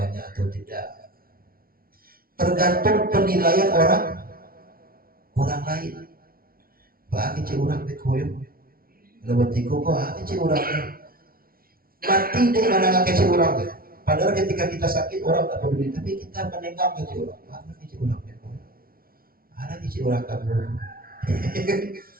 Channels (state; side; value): late; left; 0.43 ms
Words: atau tidak. Tergantung penilaian orang lain. Bah kecil orang bekoyo, lewat tiko kok kecil orang mati deh mana kecil orang. Padahal ketika kita sakit orang tak peduli, tapi kita menengok kecil orang. Ada kecil orang bekoyo, ada kecil orang kamu.